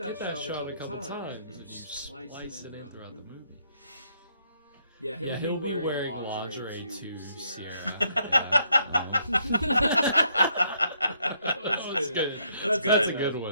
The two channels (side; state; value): both; inverted; correlation -0.72